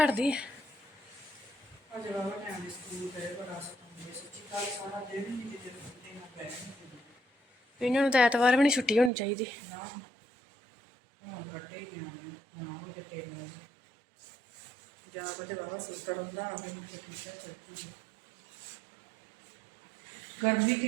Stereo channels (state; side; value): drops out; left; at 9.1 s